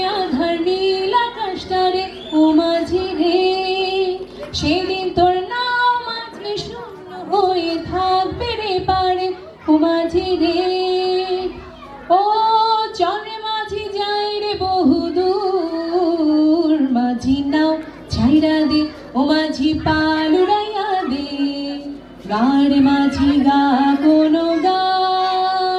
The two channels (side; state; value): both; identical; correlation 1.00